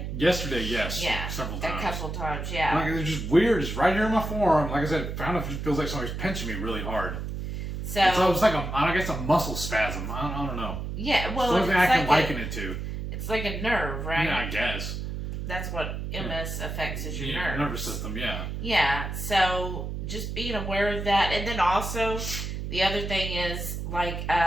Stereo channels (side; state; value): right; noise; hum, 5 dB below the sound